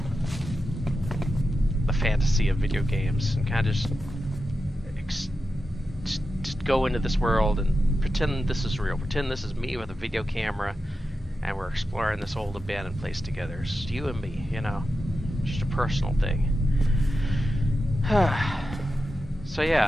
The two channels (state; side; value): normal; both; correlation 0.90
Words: fantasy of video games, and kind of just go into this world and pretend this is real. Pretend this is me with a video camera, and we're exploring this old abandoned place together. It's you and me, you know, just a personal thing. So